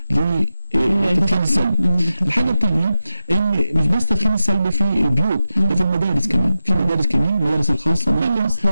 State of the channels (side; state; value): both; inverted; correlation -0.91